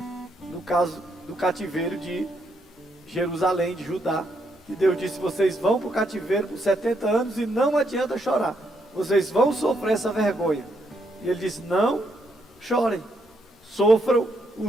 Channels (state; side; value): normal; both; correlation 0.76